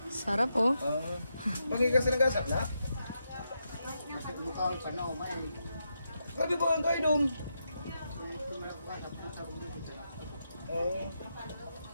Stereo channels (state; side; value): inverted; both; correlation -0.84